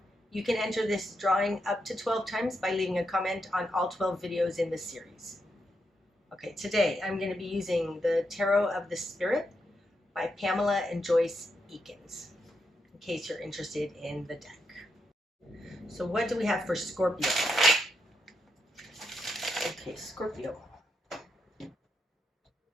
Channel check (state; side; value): normal; both; correlation 0.83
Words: You can enter this drawing up to 12 times by leaving a comment on all 12 videos in this series. Okay, today I'm going to be using the Tarot of the Spirit by Pamela and Joyce Eakins, in case you're interested in the deck. So what do we have for Scorpio? Okay, Scorpio.